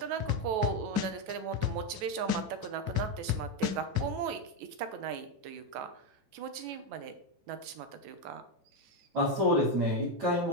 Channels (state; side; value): late; left; 9.2 ms